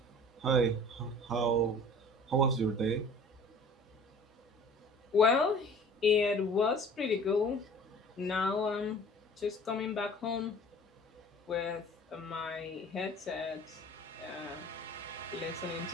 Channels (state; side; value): normal; both; correlation 0.46